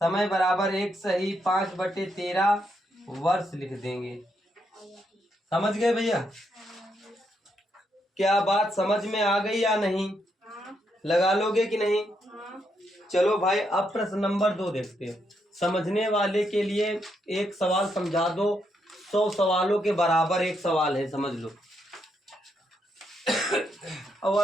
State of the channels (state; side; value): normal; both; correlation 0.78